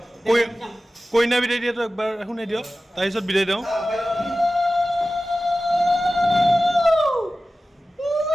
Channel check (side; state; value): both; normal; correlation 0.95